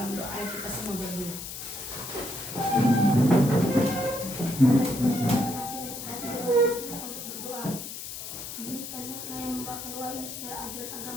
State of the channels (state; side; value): noise; left; hiss, 8 dB below the sound